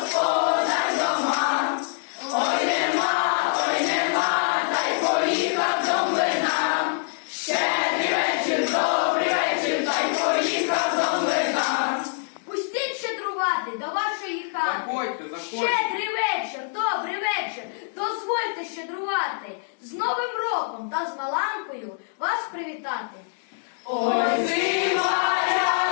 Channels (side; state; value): right; silent; digital silence